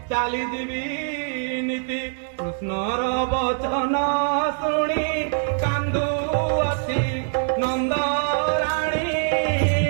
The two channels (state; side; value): silent; left; 63 dB below the other